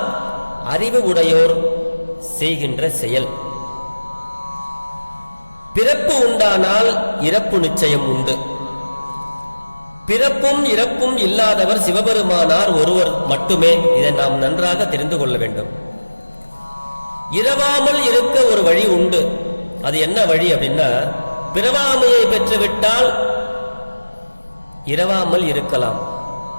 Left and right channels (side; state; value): both; inverted; correlation -1.00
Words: அறிவு உடையோர் செய்கின்ற செயல். பிறப்பு உண்டானால் இறப்பு நிச்சயம் உண்டு. பிறப்பும் இறப்பும் இல்லாதவர் சிவபெருமானார் ஒருவர் மட்டுமே. இதை நாம் நன்றாக தெரிந்து கொள்ள வேண்டும். இரவாமல் இருக்க ஒரு வழி உண்டு. அது என்ன வழி அப்படின்னா, பிறவாமையை பெற்றுவிட்டால் இரவாமல் இருக்கலாம்.